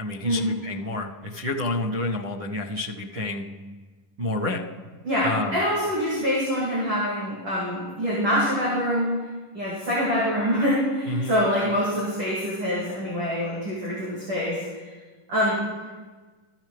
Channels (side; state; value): left; late; 11 ms